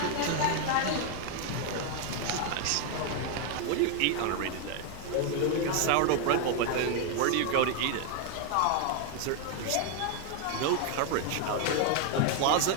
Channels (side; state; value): both; different; correlation 0.00